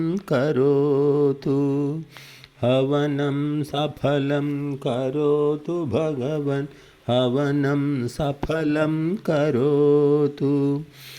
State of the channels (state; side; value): identical; both; correlation 1.00